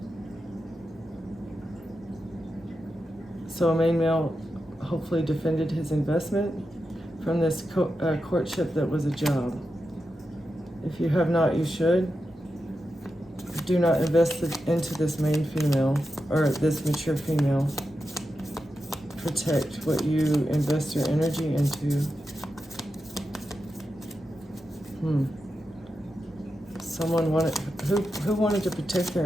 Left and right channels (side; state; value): both; normal; correlation 0.89